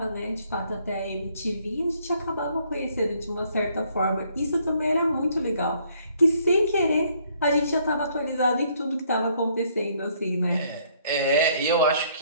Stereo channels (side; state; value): both; inverted; correlation -0.66